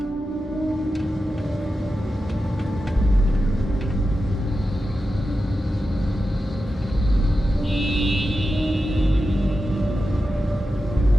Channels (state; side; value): normal; both; correlation 0.91